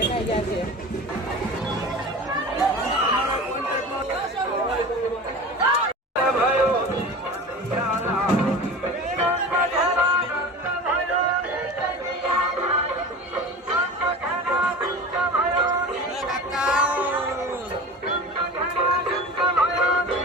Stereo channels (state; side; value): normal; both; correlation 0.34